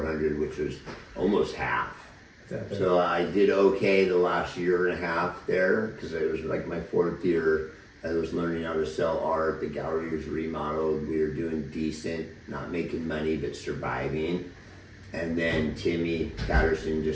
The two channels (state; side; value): identical; both; correlation 1.00